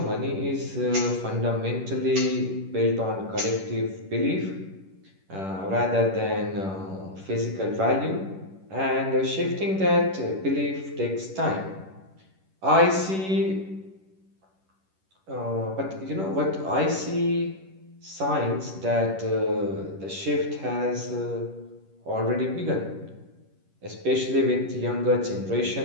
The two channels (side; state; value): left; late; 11 ms